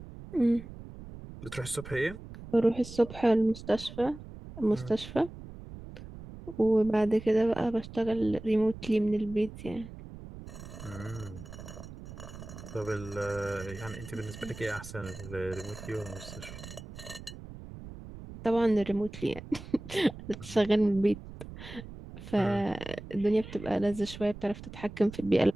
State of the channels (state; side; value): noise; right; rumble, 13 dB below the sound